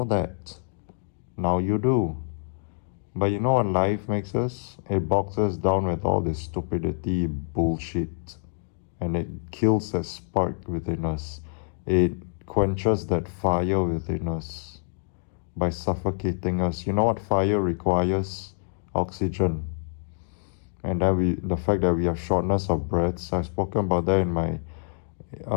that. Now you do. But you know what life makes us? It bogs us down with all this stupidity, bullshit. And it kills that spark within us. It quenches that fire within us by suffocating us. You know what fire requires? Oxygen. And then the fact that we have shortness of breaths, I've spoken about that in my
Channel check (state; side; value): silent; right; digital silence